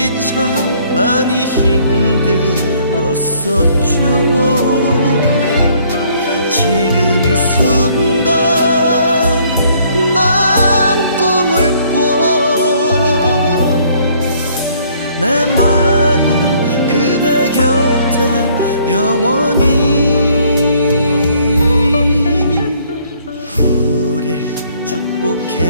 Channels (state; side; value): inverted; both; correlation -0.62